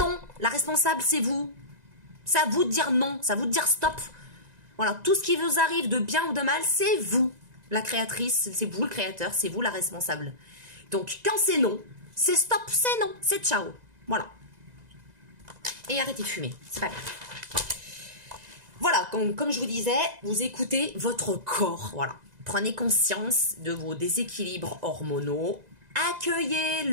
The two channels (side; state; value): left; late; 2.0 ms